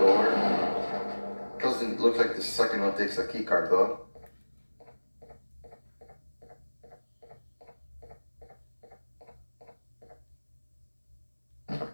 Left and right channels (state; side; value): inverted; both; correlation -1.00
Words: Doesn't look like the second one takes a keycard though.